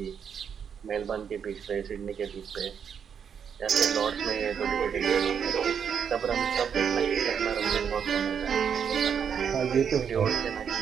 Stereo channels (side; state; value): left; quieter; 7.5 dB